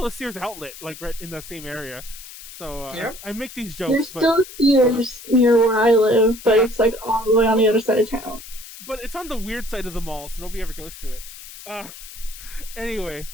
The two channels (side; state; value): left; noise; hiss, 15 dB below the sound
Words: a Sears outlet, like right in the same area. So yep. I make these jokes. There's still Sears near where I live, but it's like all the way on the other side of town. But it's on the weird side of the mall, so nobody ever goes to it. Anyway,